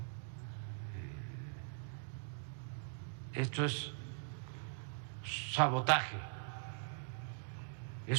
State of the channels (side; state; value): left; silent; digital silence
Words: Esto es sabotaje, es